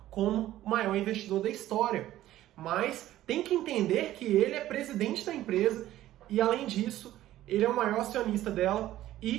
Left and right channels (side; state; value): left; quieter; 14.1 dB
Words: como o maior investidor da história. Mas tem que entender que ele é presidente da empresa e, além disso, ele é o maior acionista dela